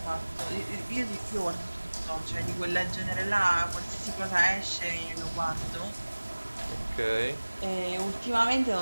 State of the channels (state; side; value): inverted; both; correlation -1.00